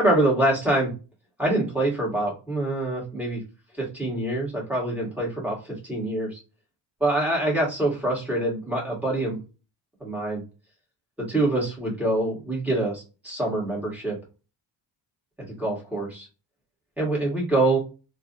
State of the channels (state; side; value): normal; both; correlation 0.52